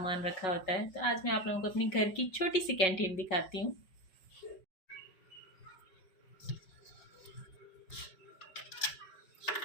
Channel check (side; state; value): right; late; 5.4 ms